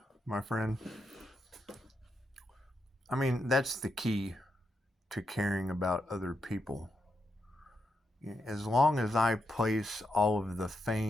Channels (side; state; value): both; normal; correlation 0.84